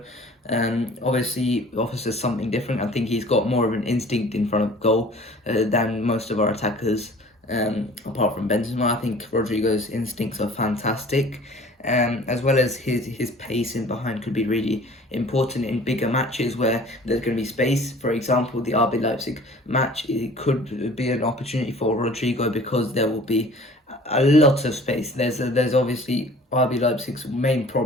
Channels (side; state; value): both; normal; correlation 0.48